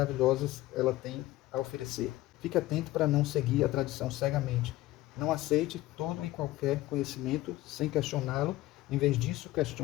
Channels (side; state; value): right; quieter; 16.9 dB